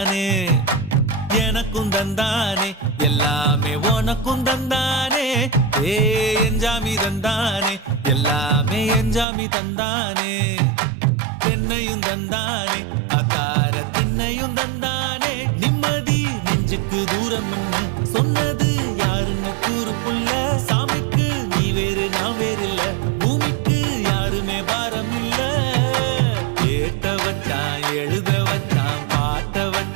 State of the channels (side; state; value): left; drops out; at 9.2 s